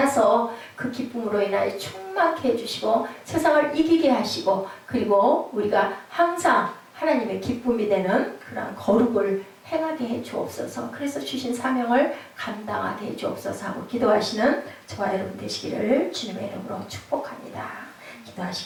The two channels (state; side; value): identical; both; correlation 1.00